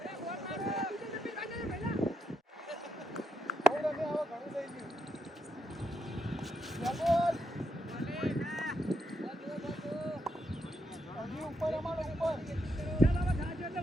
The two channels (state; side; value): normal; both; correlation 0.80